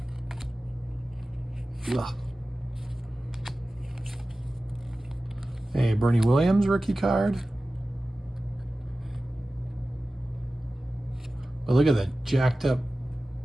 Ugh. Hey, Bernie Williams rookie card. But look at that jacked up.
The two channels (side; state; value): both; normal; correlation 0.96